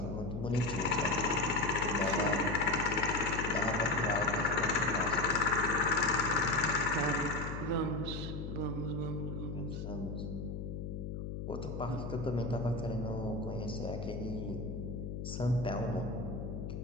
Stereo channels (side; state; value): left; noise; hum, 5 dB below the sound